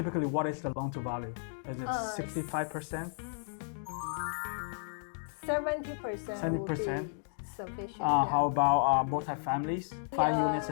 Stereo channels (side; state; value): right; silent; digital silence